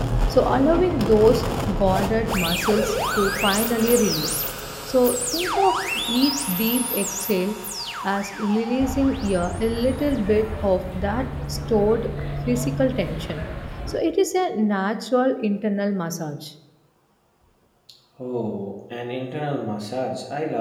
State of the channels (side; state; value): both; identical; correlation 1.00